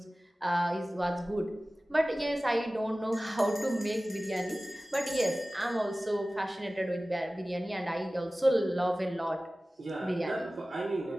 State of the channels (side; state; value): both; normal; correlation 0.97